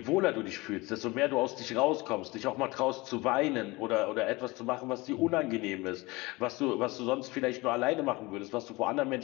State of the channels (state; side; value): quieter; right; 22.8 dB